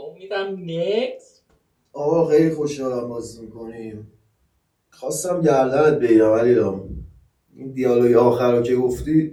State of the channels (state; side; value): identical; both; correlation 1.00